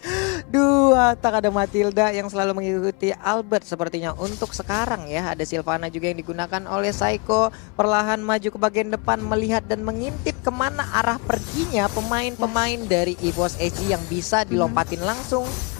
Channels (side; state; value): right; quieter; 30.8 dB